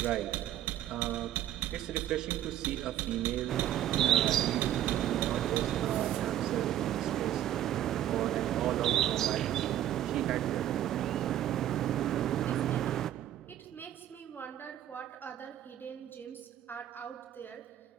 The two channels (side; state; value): left; quieter; 12.1 dB